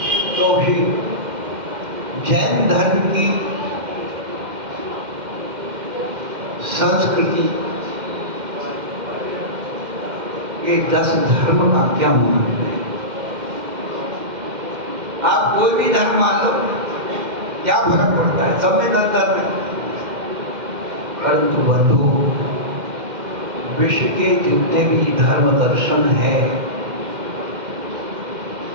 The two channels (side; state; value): left; late; 2.1 ms